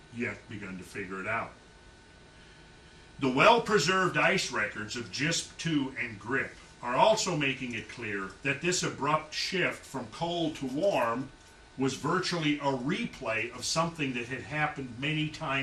yet begun to figure it out. The well-preserved ice records of JISP 2 and GRIP are also making it clear that this abrupt shift from cold to warm was virtually a replay of something that had happened many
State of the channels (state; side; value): identical; both; correlation 1.00